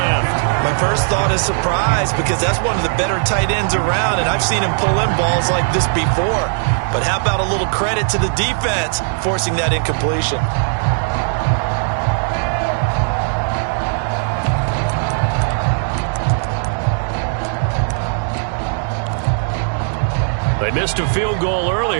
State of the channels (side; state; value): left; silent; 63 dB below the other